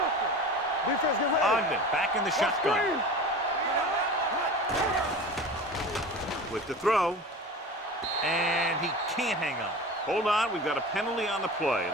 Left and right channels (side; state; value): both; normal; correlation 0.34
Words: Defense get ready. Ogden back in the shotgun. With the throw. And he can't hang on. Hold on, we've got a penalty on the play,